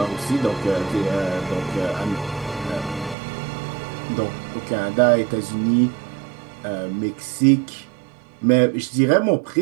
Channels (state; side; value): drops out; left; at 3.2 s